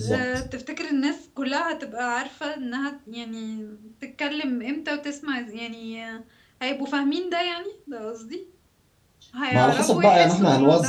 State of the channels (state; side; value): identical; both; correlation 1.00